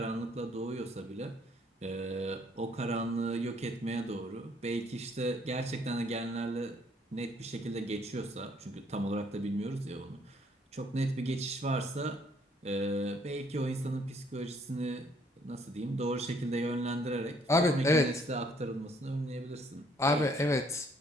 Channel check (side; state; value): both; normal; correlation 0.64